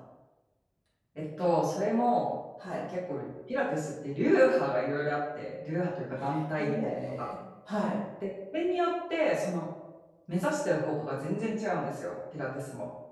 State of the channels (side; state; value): both; identical; correlation 1.00